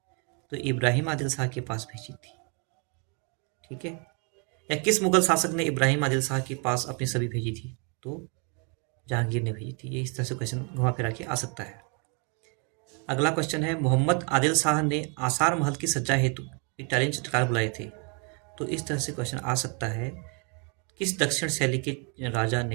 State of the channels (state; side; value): quieter; left; 35.4 dB